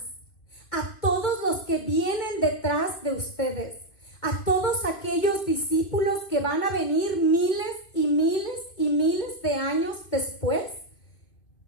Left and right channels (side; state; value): right; late; 2.8 ms